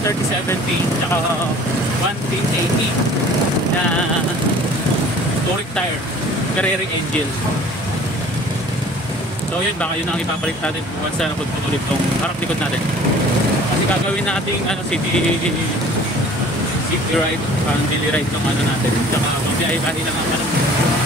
tsaka 110/80 na touring tire, Carrera engine. So yun, baka yun ang ipapalit natin once na napagputulit tong harap likod natin. Kasi gagawin natin city ride, daily ride ng natin. Saka magbiyahe-biyahe lang ang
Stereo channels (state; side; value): normal; both; correlation 0.49